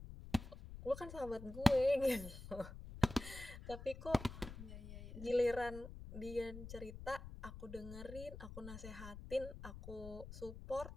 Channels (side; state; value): left; noise; rumble, 11 dB below the sound